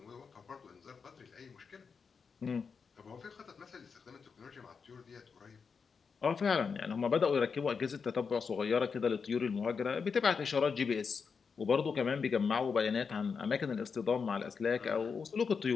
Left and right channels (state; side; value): quieter; right; 5.6 dB